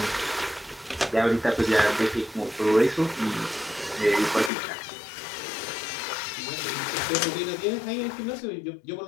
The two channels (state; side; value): drops out; right; at 4.5 s